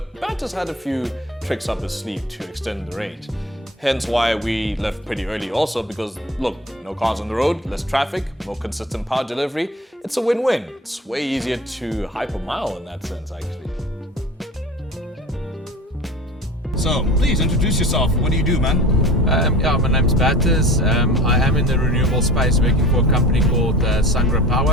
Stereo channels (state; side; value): normal; both; correlation 0.39